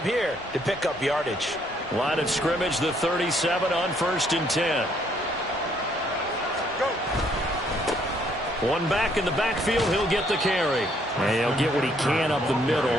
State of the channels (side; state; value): both; normal; correlation 0.68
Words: here to pick up yardage. Line of scrimmage, the 37 on 1st and 10. One back in the backfield, he'll get the carry. And he'll get what he can up the